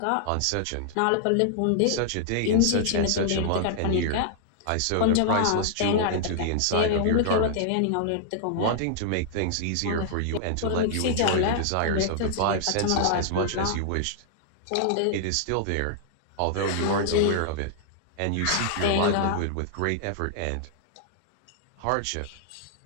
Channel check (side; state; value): both; different; correlation -0.01